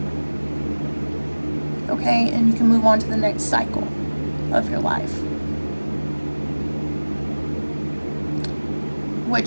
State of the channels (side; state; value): both; inverted; correlation -1.00